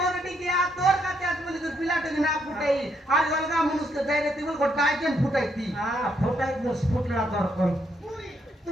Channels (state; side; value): normal; both; correlation 0.75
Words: গিয়া তোর কাছে আজ বলি তুই পিলাটা না ফুটাই আর গলগা মানুষকে যাইরে তুই বল গোটাই কেন ফুটাইতি হ্যাঁ ফুটাই দোস ফুটলা দরকন